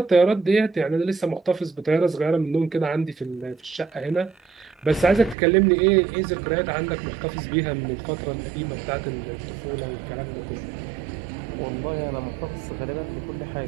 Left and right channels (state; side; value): drops out; left; at 5.4 s